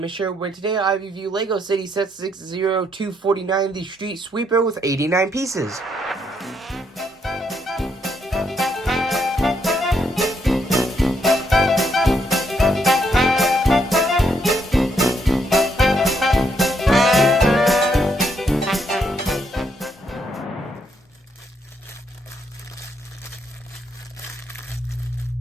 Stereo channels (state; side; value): normal; both; correlation 0.75